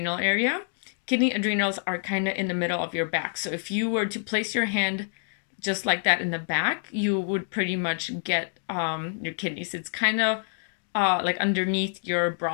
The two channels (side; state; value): right; silent; digital silence